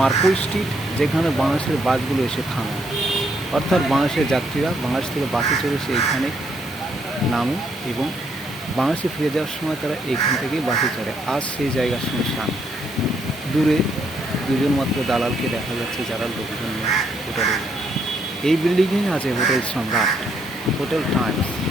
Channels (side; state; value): both; normal; correlation 0.72